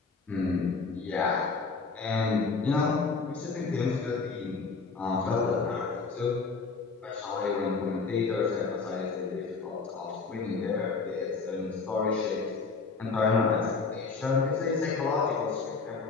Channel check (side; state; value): right; quieter; 4.5 dB